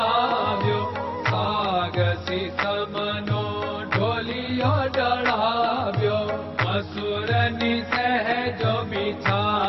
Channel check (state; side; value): identical; both; correlation 1.00